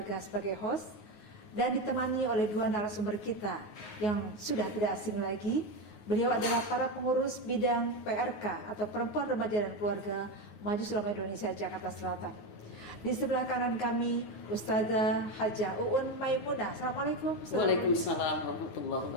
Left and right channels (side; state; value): right; late; 9.5 ms